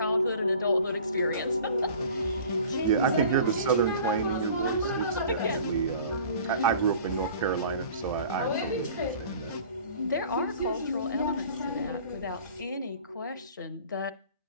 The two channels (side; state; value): both; inverted; correlation -0.46